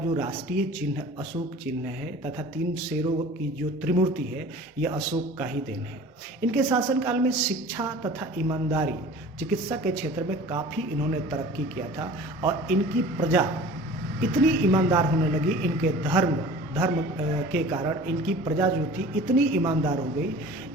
राष्ट्रीय चिन्ह अशोक चिन्ह है, तथा 3 शेरों की जो त्रिमूर्ति है, यह अशोक का ही देन है। इनके शासनकाल में शिक्षा तथा ईमानदारी, चिकित्सा के क्षेत्र में काफ़ी इन्होंने तरक्की किया था, और इनकी प्रजा इतनी ईमानदार होने लगी, इनके धर्म के कारण इनकी प्रजा जो थी इतनी ईमानदार हो गई,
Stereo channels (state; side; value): normal; both; correlation 0.43